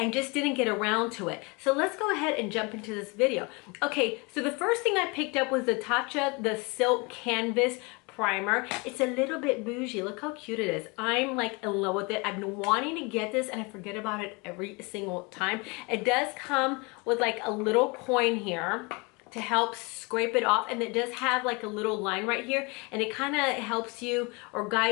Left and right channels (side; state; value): right; quieter; 28.4 dB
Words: just didn't get around to it. So let's go ahead and jump into this video. Okay, so the first thing I picked up was the Tatcha, the Silk Canvas primer. It's a little bit bougie. Look how cute it is. I'm like in love with it. I've been wanting to get this and I forget about it every single time. It does come with like a little coin here to help scrape it off, and it does have like a little line right here, and it kind of helps you or